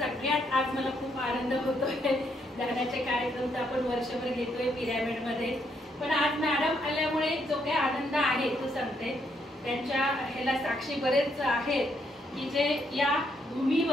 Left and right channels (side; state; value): both; normal; correlation 0.75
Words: आज मला खूप आनंद होतोय. ध्यानाचे कार्यक्रम तर आपण वर्षभर घेतोय पिरॅमिड मध्ये, पण आज मॅडम आल्यामुळे जो काही आनंद आहे तो सांगते. त्यांच्या ह्याला साक्षी बरेच आहेत की जे या